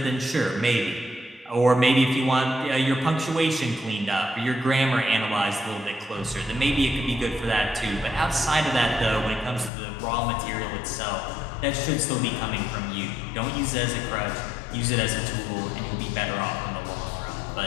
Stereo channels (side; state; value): right; drops out; at 9.7 s